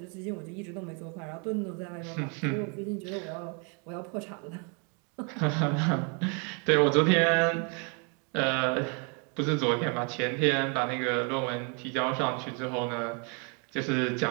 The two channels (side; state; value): left; quieter; 36.5 dB